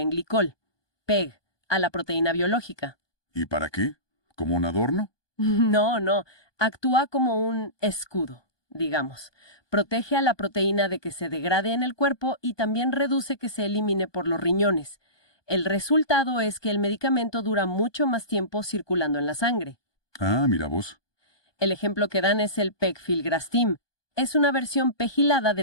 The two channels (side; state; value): right; late; 1.2 ms